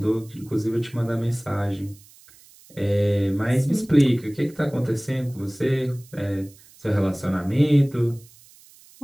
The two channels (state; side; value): noise; right; hiss, 25 dB below the sound